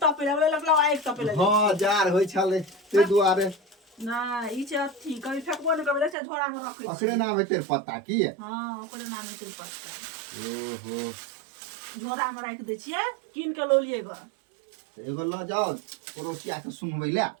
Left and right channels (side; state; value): left; drops out; at 6.2 s